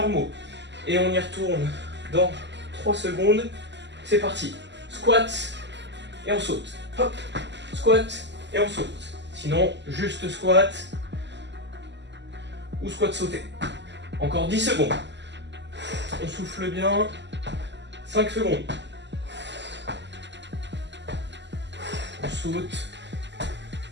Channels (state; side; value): late; left; 0.51 ms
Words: Et on y retourne dans 3 secondes. C'est parti. Squat et on saute. Hop. Squat et on saute. Sinon, juste squat ou squat sauté. Encore 10 secondes. On souffle bien. 5 secondes. On saute.